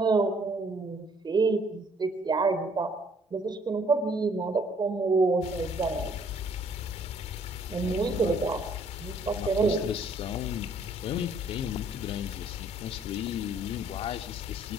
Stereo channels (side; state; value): both; normal; correlation 0.62